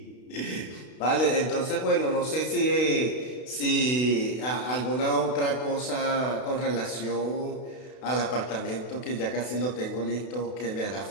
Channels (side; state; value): right; late; 32 ms